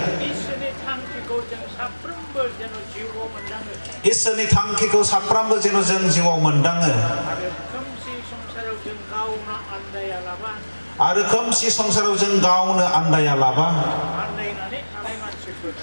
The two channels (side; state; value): both; inverted; correlation -1.00